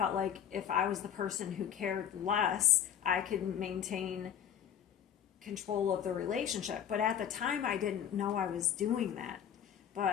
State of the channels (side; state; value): right; quieter; 9.3 dB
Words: like if I was the person who cared less, I could maintain control of the relationship. But at the time, I didn't know I was doing that.